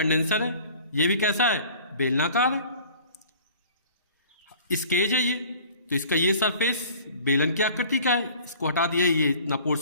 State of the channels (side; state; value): both; inverted; correlation -0.48